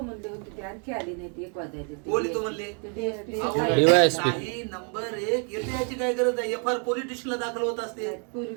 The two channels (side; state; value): left; quieter; 39.7 dB